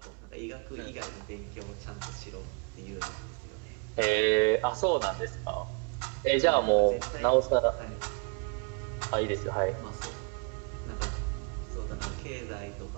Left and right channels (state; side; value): quieter; left; 32.5 dB